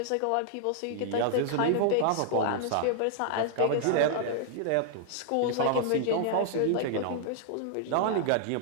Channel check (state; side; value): different; both; correlation -0.01